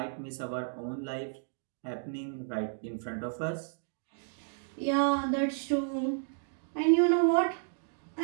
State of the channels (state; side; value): silent; left; digital silence